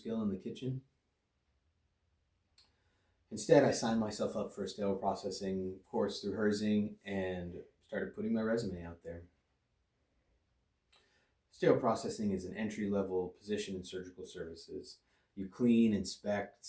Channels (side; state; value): both; identical; correlation 1.00